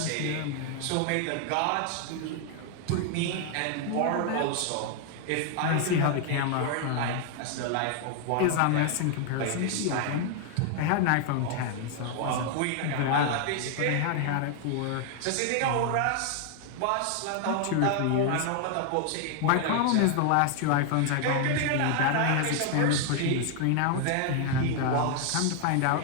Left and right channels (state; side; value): different; both; correlation 0.00